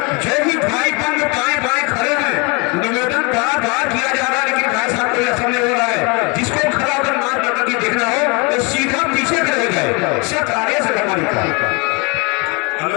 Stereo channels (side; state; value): right; quieter; 29.8 dB